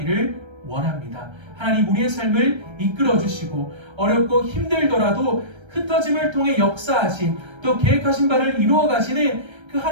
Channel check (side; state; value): left; late; 1.3 ms